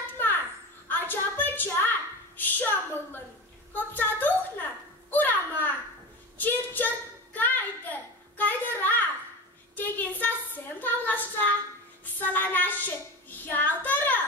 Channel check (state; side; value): normal; both; correlation 0.28